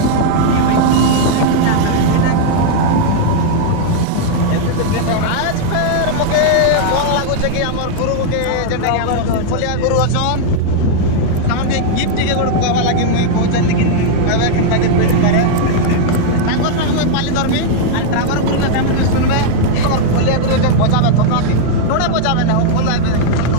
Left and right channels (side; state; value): both; different; correlation -0.01